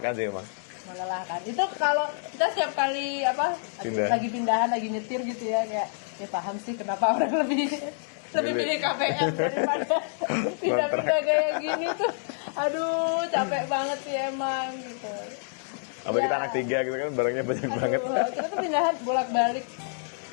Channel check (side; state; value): right; silent; digital silence